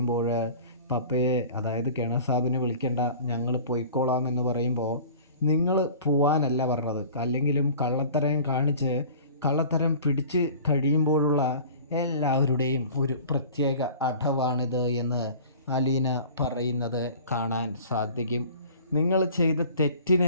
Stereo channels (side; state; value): both; inverted; correlation -0.43